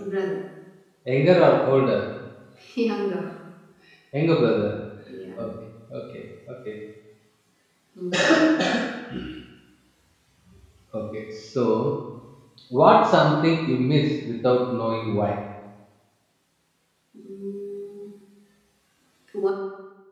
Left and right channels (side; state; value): both; identical; correlation 1.00